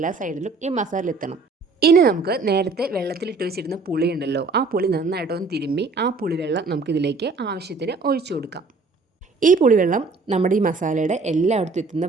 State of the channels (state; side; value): quieter; left; 4.0 dB